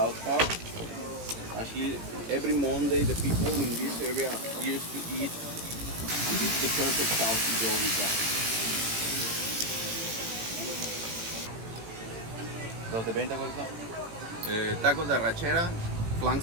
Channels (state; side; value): late; left; 18 ms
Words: Park. Actually, every Monday, the people in this area used to eat. This is the perfect sauce to go with that. ¿Los de venta cuáles son? Tacos de arrachera, flank